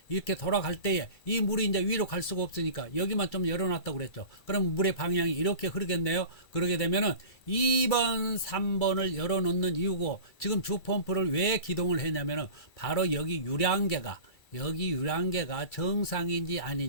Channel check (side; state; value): right; late; 2.3 ms